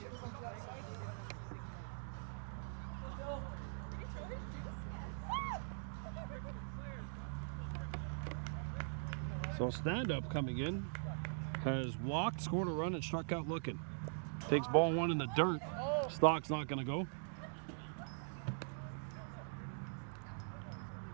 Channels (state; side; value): silent; left; digital silence